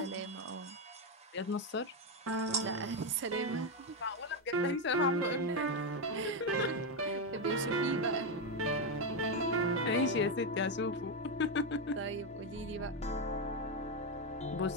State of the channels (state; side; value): normal; both; correlation 0.07